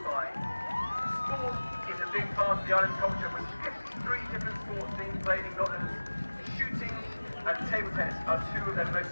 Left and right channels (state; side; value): inverted; both; correlation -1.00